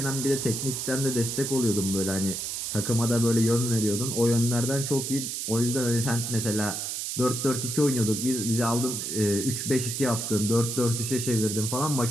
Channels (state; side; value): noise; right; hiss, 3 dB below the sound